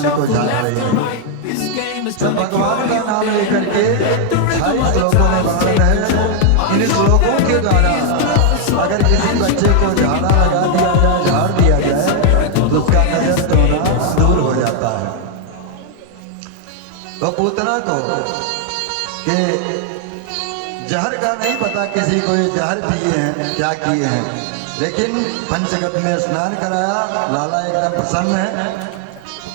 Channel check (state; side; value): different; both; correlation 0.00